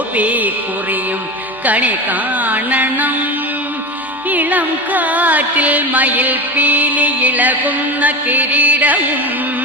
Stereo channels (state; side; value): normal; both; correlation 0.25